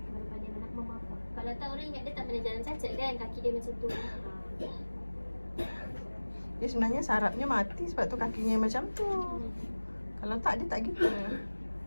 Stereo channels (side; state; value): both; inverted; correlation -1.00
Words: Pandai nak memaaf. Kalau tak orang ingat dia tak pernah jalan cacat kan. Kaki dia macam tu. Dia sebenarnya sarafnya mati sebab tu kakinya macam tu. Kalau tak dia tak gitu.